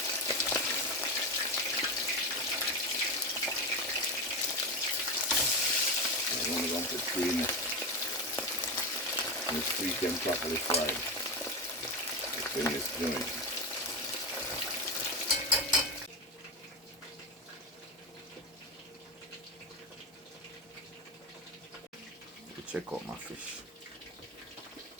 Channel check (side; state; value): both; normal; correlation 0.17